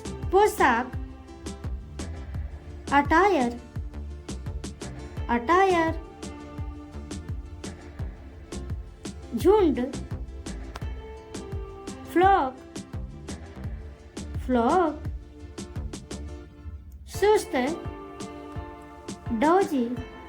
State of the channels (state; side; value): identical; both; correlation 1.00